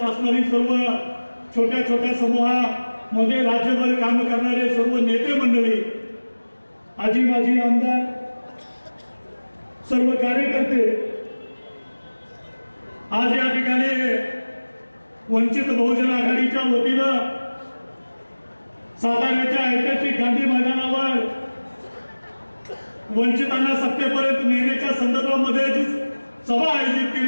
असणारी सर्व छोट्या छोट्या समूहामध्ये राज्यभर काम करणारे सर्व नेते मंडळी, आजी माजी आमदार, सर्व कार्यकर्ते, आज या ठिकाणी वंचित बहुजन आघाडीच्या वतीनं साताऱ्याच्या ऐतिहासिक गांधी मैदानावर वंचितांना सत्तेपर्यंत नेण्याच्या संदर्भामध्ये जी सभा आयोजित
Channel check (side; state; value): both; inverted; correlation -1.00